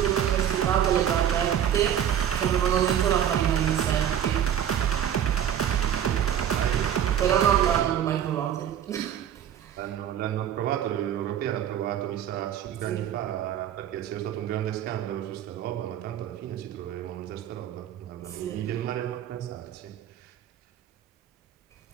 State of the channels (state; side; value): quieter; left; 9.9 dB